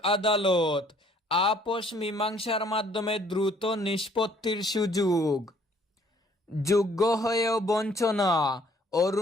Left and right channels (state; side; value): normal; both; correlation 0.61